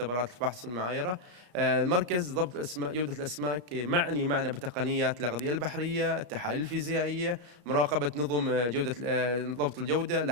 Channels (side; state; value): left; late; 34 ms